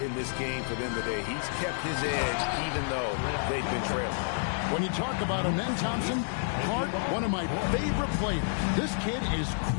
in this game for them today. He's kept his edge even though they've been trailing. When you talk about Amen Thompson, Clark, one of my favorite players. This kid is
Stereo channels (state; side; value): silent; right; digital silence